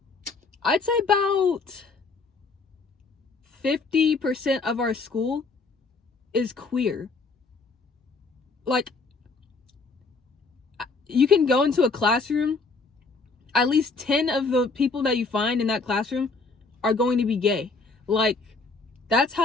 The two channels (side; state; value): right; quieter; 4.0 dB